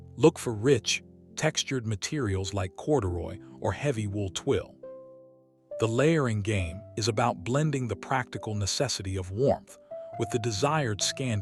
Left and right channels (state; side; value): identical; both; correlation 1.00